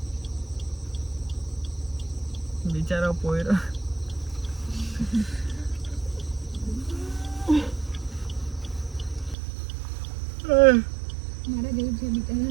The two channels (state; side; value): drops out; left; at 9.3 s